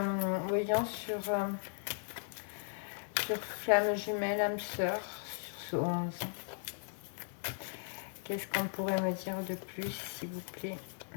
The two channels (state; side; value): silent; right; digital silence